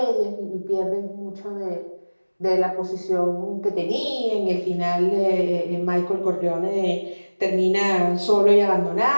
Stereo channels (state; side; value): inverted; both; correlation -1.00